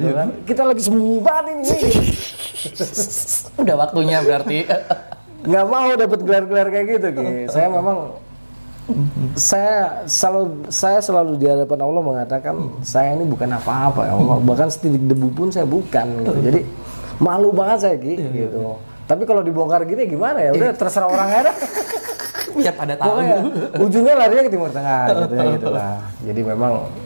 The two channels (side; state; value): both; inverted; correlation -1.00